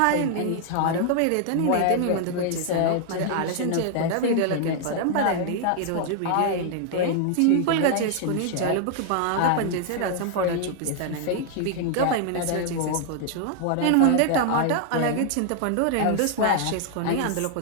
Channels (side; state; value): both; different; correlation 0.00